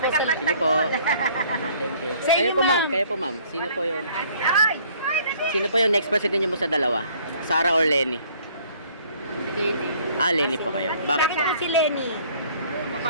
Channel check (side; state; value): both; inverted; correlation -0.58